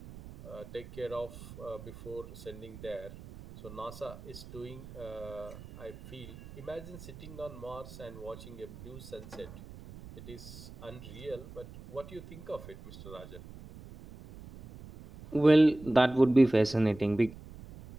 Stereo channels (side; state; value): right; noise; rumble, 15 dB below the sound